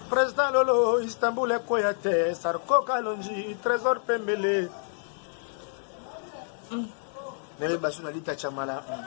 Président Lolo Istanbul Ekoyate Sarko Kalonji Trésor Pembele Nele Basuna Lita Chamala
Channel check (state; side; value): silent; right; digital silence